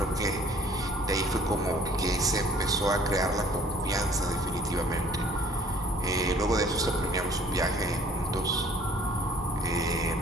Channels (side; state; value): both; normal; correlation 0.55